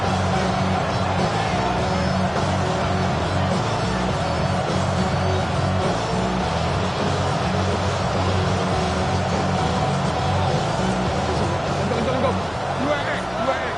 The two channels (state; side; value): noise; right; hum, 21 dB below the sound